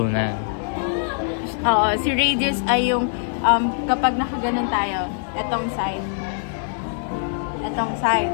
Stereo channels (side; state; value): right; silent; digital silence